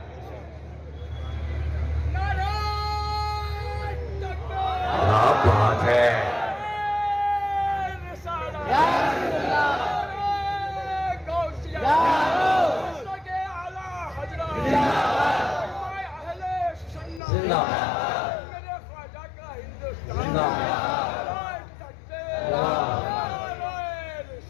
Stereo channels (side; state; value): right; drops out; at 17.2 s